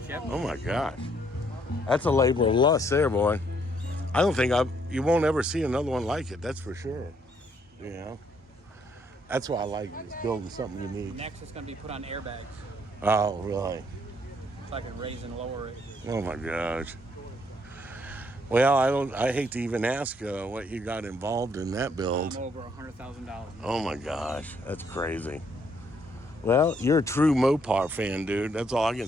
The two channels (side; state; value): both; normal; correlation 0.69